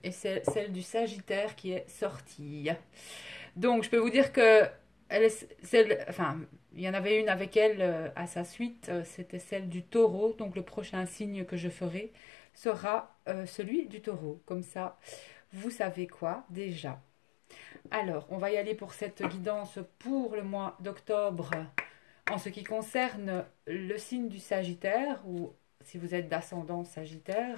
et celle du Sagittaire qui est sortie. Donc je peux vous dire que il y en avait une avec elle à sa suite, c'était celle du Taureau. Donc le prochain signe que je ferai sera celui du Taureau. Comme ça, vous savez quoi déjà. Alors, on va y aller pour cette guidance pour le mois d'octobre en ce qui concerne le signe du Sagittaire ou si vous êtes d'ascendant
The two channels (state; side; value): drops out; right; at 12.1 s